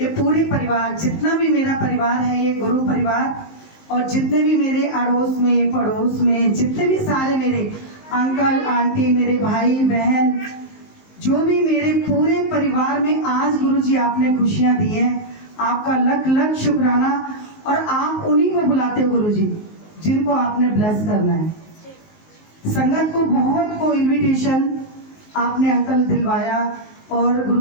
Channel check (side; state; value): right; late; 19 ms